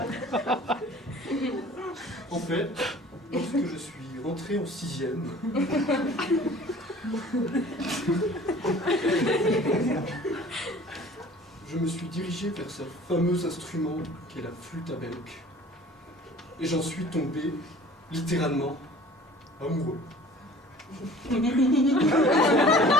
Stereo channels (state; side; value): normal; both; correlation 0.47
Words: En fait, lorsque je suis rentré en 6e, je me suis dirigé vers ce fameux instrument qu'est la flûte à bec. Et j'en suis tombé, littéralement, amoureux.